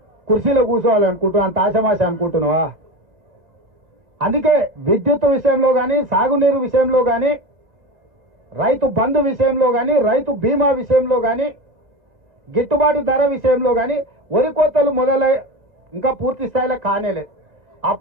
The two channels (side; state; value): left; late; 2.0 ms